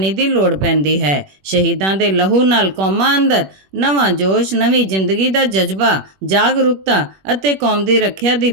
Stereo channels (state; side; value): late; left; 21 ms